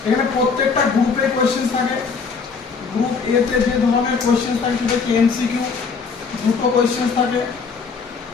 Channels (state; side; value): quieter; right; 5.2 dB